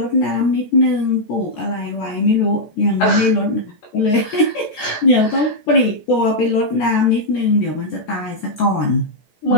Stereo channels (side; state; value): right; late; 14 ms